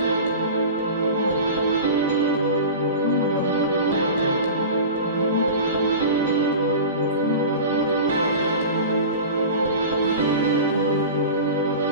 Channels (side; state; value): both; inverted; correlation -0.33